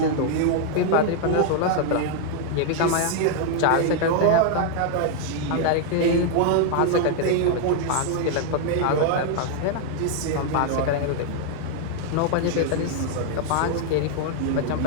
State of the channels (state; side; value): different; both; correlation 0.00